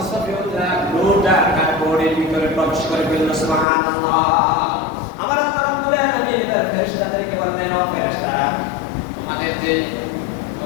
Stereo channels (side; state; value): right; drops out; at 3.7 s